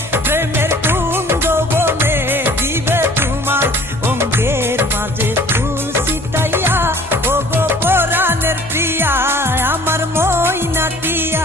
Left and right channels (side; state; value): both; normal; correlation 0.53